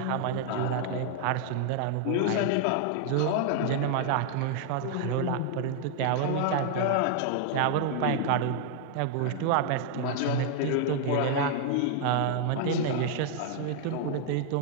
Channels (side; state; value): both; different; correlation 0.00